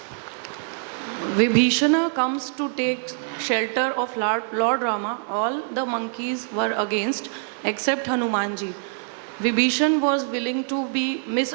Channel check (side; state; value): left; silent; 62 dB below the other